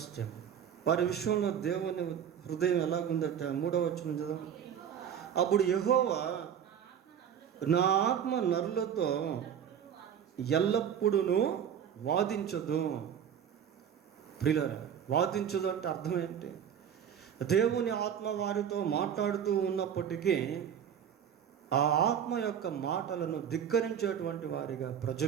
them, వారి విషయంలో దేవుని హృదయం ఎలాగుందట? 3వ వచనం చదువు. అప్పుడు యెహోవా, నా ఆత్మ నరులతో ఎల్లప్పుడూ వాదించదు. ప్రియులారా, వాదించదు అంటే అర్థం ఏంటి? దేవుని ఆత్మ వారితో మాట్లాడుతూ ఉన్నప్పటికీ ఆ ఆత్మ యొక్క మాటలను ధిక్కరించేటువంటి వారిగా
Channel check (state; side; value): quieter; left; 8.7 dB